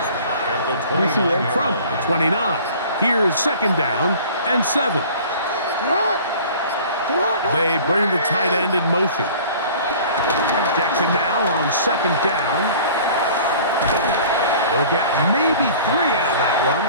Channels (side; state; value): both; inverted; correlation -0.46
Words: the 29. From the 29. Here's second down and 7. They bring the tight end in motion. Jackson now on second down. They'll get maybe 3 out of that one,